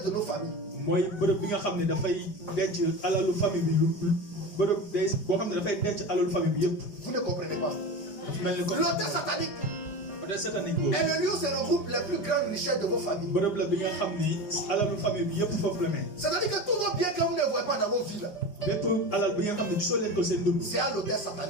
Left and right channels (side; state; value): right; late; 4.9 ms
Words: de nos familles. mooy bërëb bi nga xam ne dafay denc alalu famille bi bërëb day boo xam ne dafay denc alalu famille bi yëpp Vous ne comprenez pas. dafa mel ni ko L'autel satanique hôtel satanique boobu est le lieu où se regroupent les plus grandes richesses de vos familles. bërëb la bi nga xam ni alalu famille bi yëpp foofu la ne C'est-à-dire que tous vos biens que vous ne voyez pas dans vos villes, bépp alal bi nga xam ne gisoo leen ko seen dund c'est à l'autel